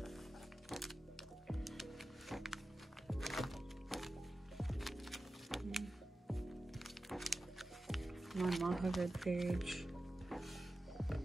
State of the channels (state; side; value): normal; both; correlation 0.93